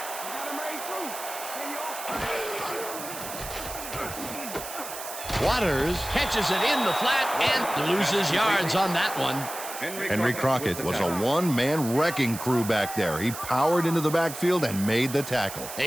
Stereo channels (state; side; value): noise; right; hiss, 10 dB below the sound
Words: Waters catches it in the flat and loses yards on that one. Henry Crockett was a one-man wrecking crew back there. He powered into the backfield and made the tackle.